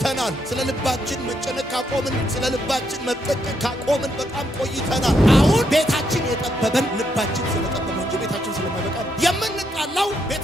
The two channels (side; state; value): both; normal; correlation 0.77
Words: ስለ ልባችን መጨነቅ ካቆምን፣ ስለ ልባችን መጠቀቅ ካቆምን በጣም ቆይተናል። አሁን ቤታችን የጠበበን ልባችን ስለጠበበ እንጂ ቤታችን ስለማይበቃ የምንጣላው